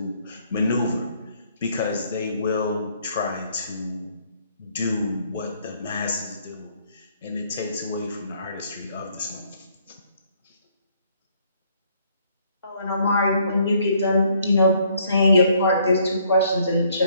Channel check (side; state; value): both; inverted; correlation -0.66